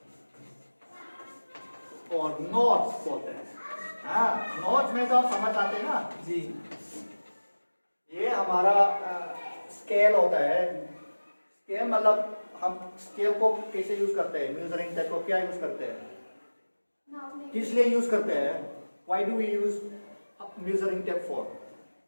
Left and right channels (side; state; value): both; inverted; correlation -1.00